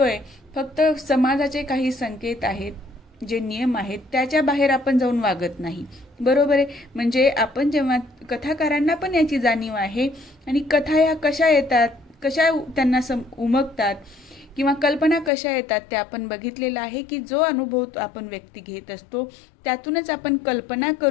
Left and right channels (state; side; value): drops out; right; at 15.3 s